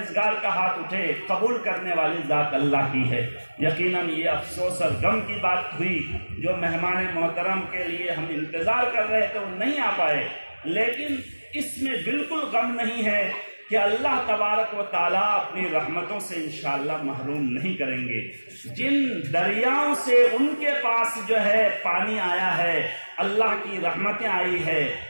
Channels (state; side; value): inverted; both; correlation -1.00